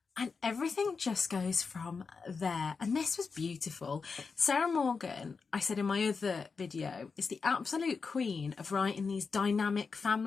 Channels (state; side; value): quieter; right; 5.0 dB